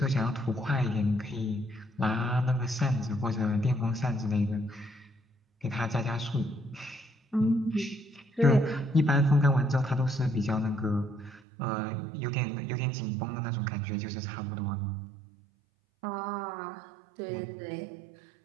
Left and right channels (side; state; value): left; drops out; at 11.4 s